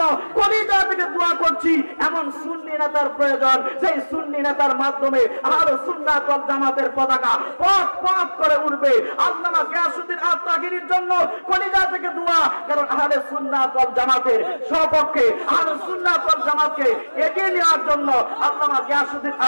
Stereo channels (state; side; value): inverted; both; correlation -1.00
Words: কলিজা থেকে দোয়া করছি। এমন সুন্নি নেতার প্রয়োজন, সেই সুন্নি নেতার মাধ্যমে আহলে সুন্নাত ওয়াল জামাতের পতাকা পথ পথ করে উঠবে। আল্লামা গিয়াসউদ্দিন আত্মাগিরির জন্য কলিজা থেকে দোয়া, কারণ আহলে সুন্নাত ওয়াল জামাতের সপক্ষে, আহলে সুন্নাত ওয়াল জামাতকে এগিয়ে নেওয়ার জন্য আল্লামা গিয়াসউদ্দিন